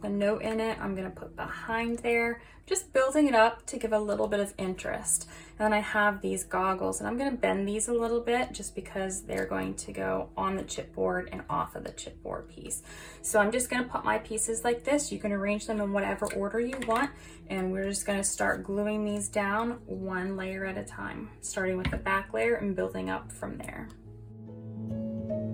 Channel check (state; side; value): identical; both; correlation 1.00